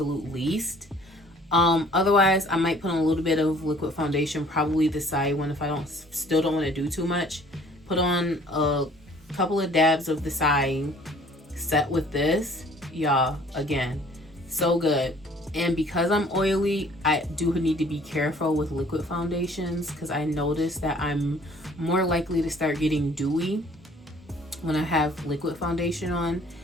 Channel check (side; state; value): both; normal; correlation 0.55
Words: least. Otherwise I might put on a little bit of liquid foundation, probably the Saie one, if I still don't want to do too much. Put on a couple of dabs of the Saie, set with this. Y'all, again, so good. And because I'm oily, I do need to be careful with liquid foundations, because I noticed that I'm more likely to start getting dewy when I have liquid foundation on.